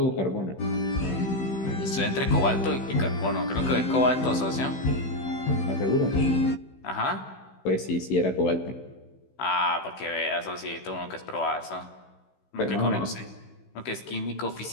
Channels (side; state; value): right; late; 16 ms